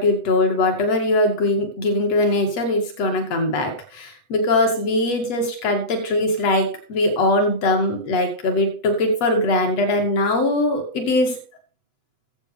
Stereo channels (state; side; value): late; right; 8.3 ms